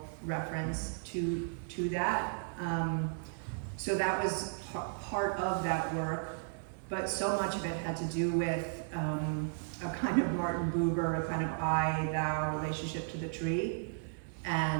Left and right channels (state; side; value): silent; left; 55 dB below the other